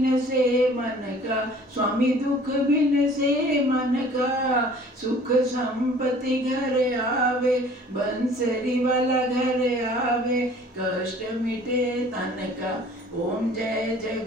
से मन का स्वामी दुख बिन से मन का सुख संपत्ति घर आवे बंसरी वाला घर आवे कष्ट मिटे तन का। ओम जय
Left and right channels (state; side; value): normal; both; correlation 0.51